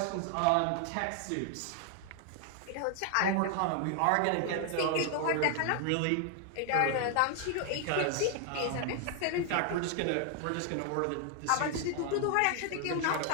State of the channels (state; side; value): different; both; correlation 0.00